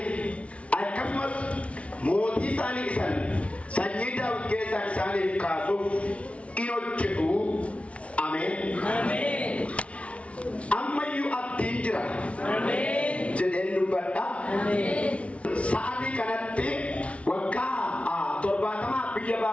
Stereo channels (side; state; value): right; late; 0.062 ms